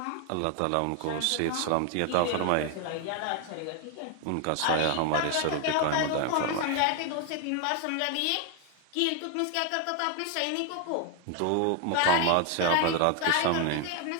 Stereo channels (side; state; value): both; different; correlation 0.01